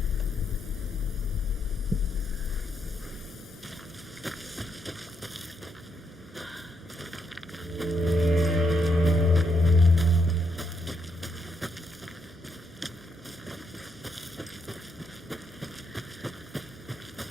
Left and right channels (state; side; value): normal; both; correlation 0.78